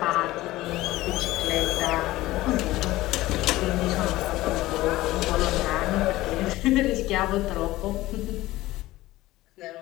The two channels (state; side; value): quieter; right; 17.4 dB